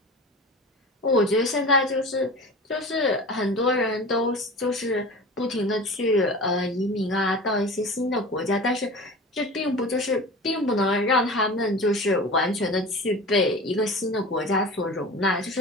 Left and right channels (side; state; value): both; normal; correlation 0.35